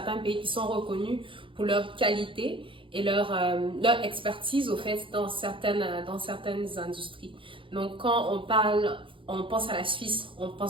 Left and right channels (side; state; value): left; late; 0.25 ms